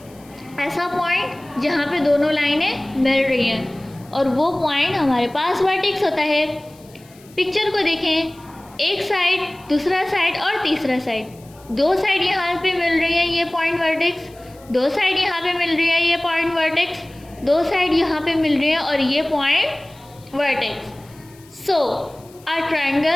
ऐसा पॉइंट जहाँ पे दोनों लाइनें मिल रही हैं, और वो पॉइंट हमारे पास वर्टेक्स होता है। पिक्चर को देखें, एक साइड, दूसरा साइड और तीसरा साइड, दो साइड यहाँ पे मिल रही है, ये पॉइंट वर्टेक्स, दो साइड यहाँ पे मिल रही है, ये पॉइंट वर्टेक्स, दो साइड यहाँ पे मिल रही है और ये point vertex. So a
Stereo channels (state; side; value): noise; left; hiss, 26 dB below the sound